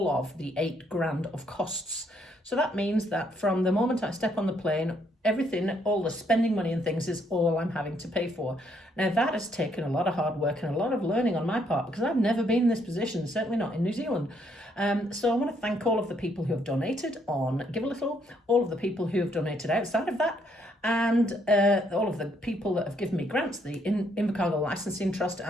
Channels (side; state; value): both; normal; correlation 0.71